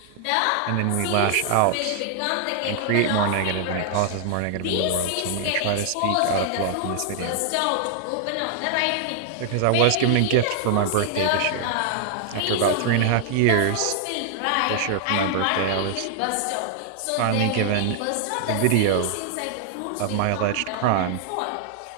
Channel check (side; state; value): both; different; correlation 0.00